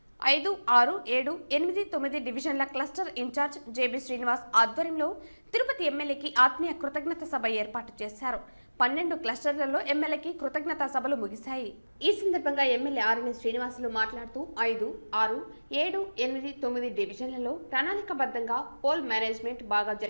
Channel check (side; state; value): both; inverted; correlation -1.00